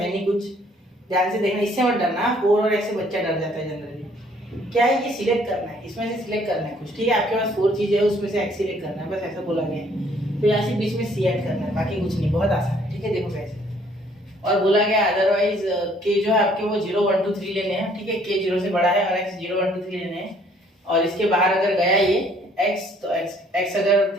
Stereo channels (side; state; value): both; normal; correlation 0.61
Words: नहीं कुछ। ध्यान से देखना, इससे मत डरना। 4 और ऐसे बच्चा डर जाता है जनरली। क्या है, ये सिलेक्ट करना है, इसमें से सिलेक्ट करना है कुछ। ठीक है, आपके पास 4 चीजें है, उसमें से एक्स सिलेक्ट करना है, बस ऐसा बोला गया है। तो यहाँ से बीच में सी ऐड करना है, बाकी कुछ नहीं, बहुत आसान है। ठीक है, देखो कैसे। और बोला गया अदरवाइज के जो है आपके वो 0 1 2 3 लेने हैं। ठीक है, के 0 से बड़ा है और एक्स 0 1 2 3 लेने हैं। और इसके बाहर अगर गया ये x, तो x अगर